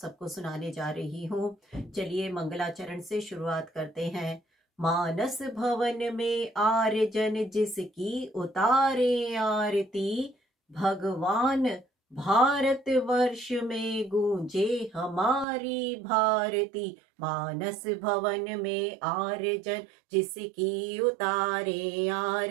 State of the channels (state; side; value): drops out; left; at 15.5 s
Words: सबको सुनाने जा रही हूँ। चलिए मंगलाचरण से शुरुआत करते हैं। मानस भवन में आर्यजन जिसकी उतारे आरती, भगवान भारत वर्ष में गूंजे हमारी भारती। मानस भवन में आर्यजन जिसकी उतारे